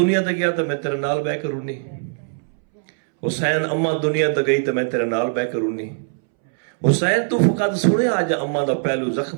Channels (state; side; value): silent; left; 65 dB below the other